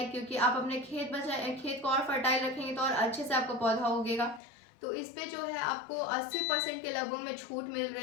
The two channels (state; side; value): drops out; right; at 4.4 s